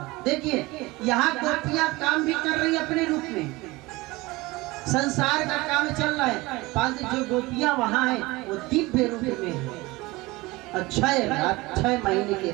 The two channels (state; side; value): quieter; left; 21.7 dB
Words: देखिए यहाँ गोपियां काम भी कर रही अपने रूप में, संसार का काम चल रहा है, परंतु जो गोपियां वहाँ हैं वो दिव्य रूप में है। और 6 महीने की